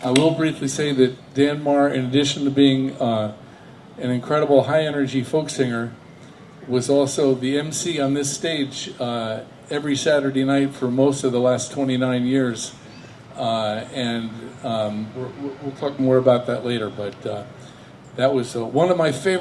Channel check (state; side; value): identical; both; correlation 1.00